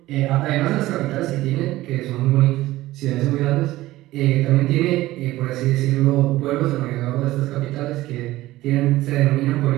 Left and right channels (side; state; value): left; quieter; 16.8 dB